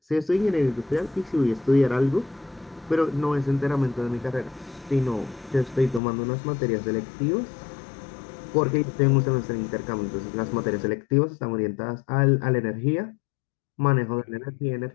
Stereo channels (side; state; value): right; drops out; at 6.0 s